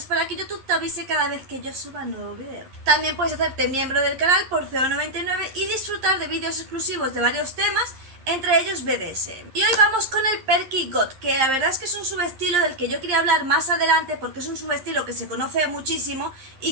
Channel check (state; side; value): late; left; 11 ms